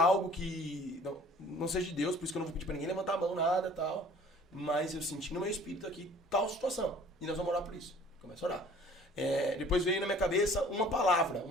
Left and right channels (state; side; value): normal; both; correlation 0.51